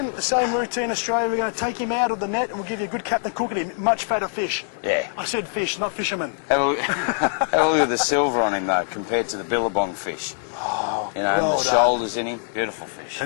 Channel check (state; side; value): silent; right; digital silence